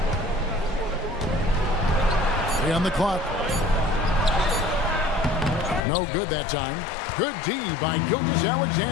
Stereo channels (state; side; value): drops out; right; at 5.8 s